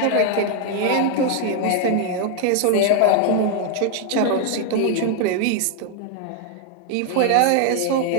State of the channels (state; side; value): different; both; correlation 0.00